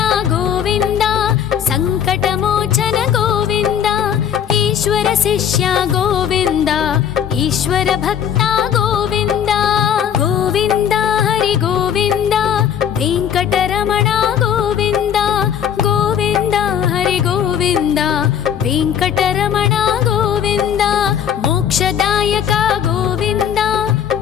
ఈశ్వర శిష్య గోవింద ఈశ్వర భక్త గోవింద గోవింద హరి గోవింద వెంకటరమణ గోవింద గోవింద హరి గోవింద వెంకటరమణ గోవింద మోక్షదాయక గోవింద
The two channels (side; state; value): right; quieter; 8.9 dB